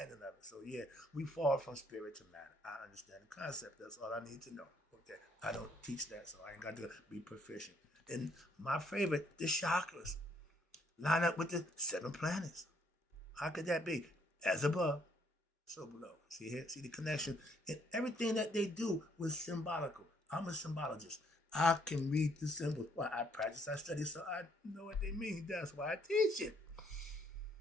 of it. So yeah, we fall from spirit to matter. I understand the concept. That's all I need to know. Okay, I don't teach that, so I ain't got to be proficient. And my favorite, the chakras, line up with the 7 planets. How could that be? As above, so below. See here? See the connection? And everything that they do was symbolical. I'm a symbologist. I can read the symbols. Well, I practice, I study, so I know what they mean. That's why I teach it.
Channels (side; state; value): both; normal; correlation 0.67